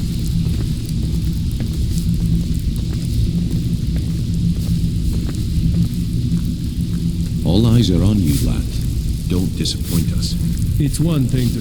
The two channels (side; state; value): both; identical; correlation 1.00